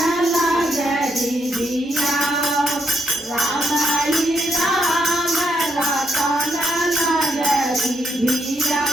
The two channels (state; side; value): normal; both; correlation 0.77